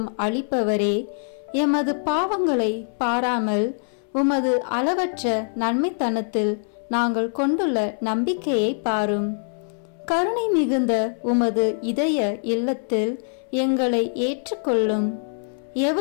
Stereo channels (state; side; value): silent; right; 61 dB below the other